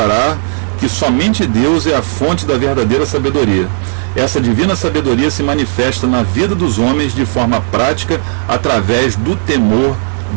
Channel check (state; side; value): silent; left; digital silence